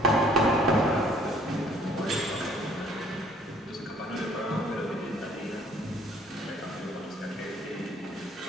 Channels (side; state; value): both; normal; correlation 0.58